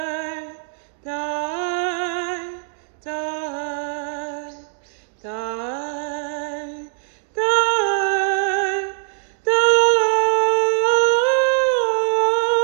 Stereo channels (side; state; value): left; silent; digital silence